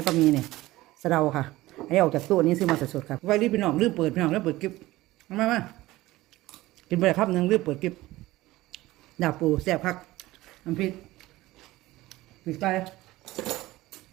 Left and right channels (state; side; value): quieter; left; 17.9 dB